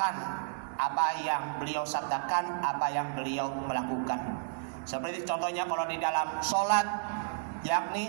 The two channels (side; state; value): left; silent; 56 dB below the other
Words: apa yang beliau sabdakan, apa yang beliau melakukan. Seperti contohnya kalau di dalam sholat,